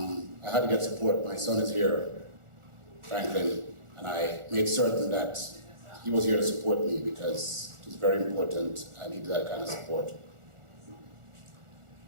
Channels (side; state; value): left; late; 1.4 ms